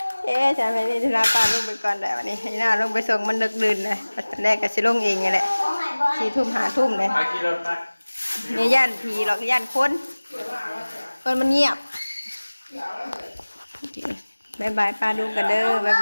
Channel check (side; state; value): both; inverted; correlation -1.00